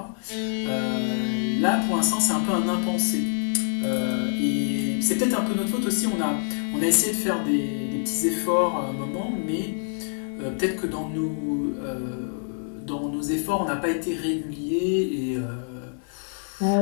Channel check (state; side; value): silent; right; 61 dB below the other